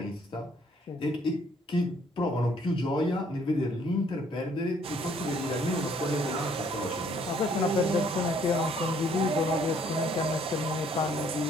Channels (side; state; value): both; normal; correlation 0.63